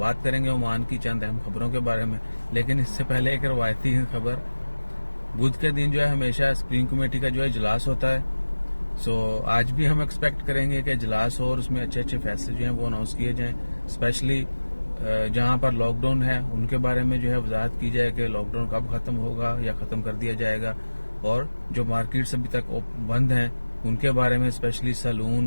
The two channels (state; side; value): inverted; both; correlation -1.00